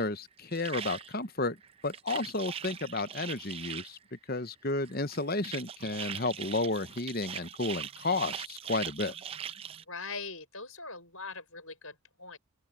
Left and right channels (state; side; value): normal; both; correlation -0.02